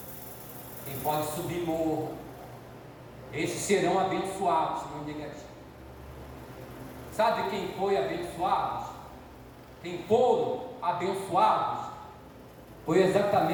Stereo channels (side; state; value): both; identical; correlation 1.00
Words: Quem pode subir morro. Esses serão abençoados, não negativo. Sabe quem foi abençoados? Quem foram abençoados? Foi